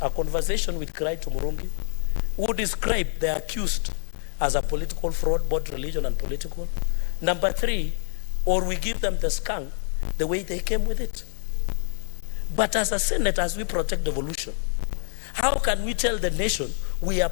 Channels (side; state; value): right; silent; digital silence